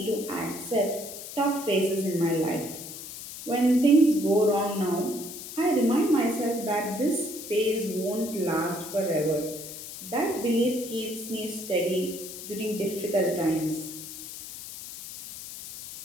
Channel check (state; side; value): noise; left; hiss, 11 dB below the sound